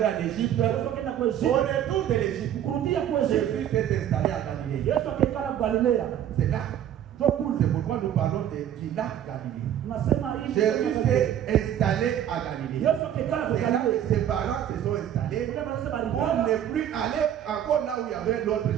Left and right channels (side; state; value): left; quieter; 10.5 dB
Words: en Égypte. Yesu akaenda kwa Au Yesu. retour de l'Égypte, Kurudia kwa Yesu. Jésus s'est installé à Galilée. Yesu akakaa Galilea. C'est là. Ndio kule. C'est pourquoi nous parlons du lac Galilée. Tunasema hii. Jésus s'est installé à Galilée. Yesu akakaa kwa C'est là que Galilea. ses parents se sont installés. Kule wanasema On alikuwa n'est plus allé encore là où il y avait l'autre